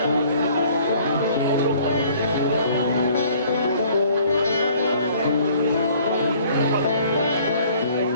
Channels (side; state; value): both; inverted; correlation -0.56